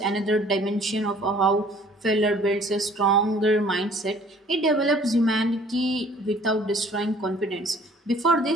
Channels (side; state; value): both; normal; correlation 0.54